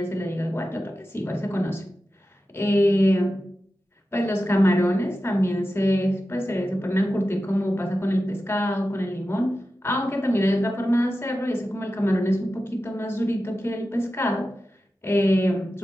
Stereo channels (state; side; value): normal; both; correlation 0.92